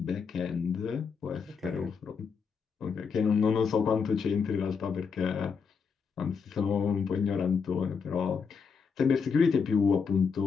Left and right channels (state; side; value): quieter; right; 5.8 dB